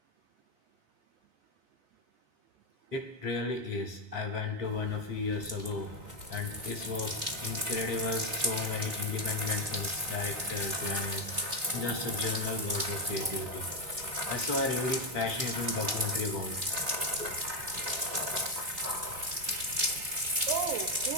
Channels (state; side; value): late; left; 3.6 ms